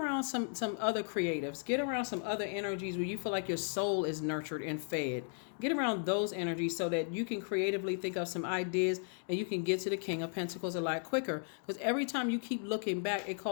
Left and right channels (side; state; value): right; silent; 54 dB below the other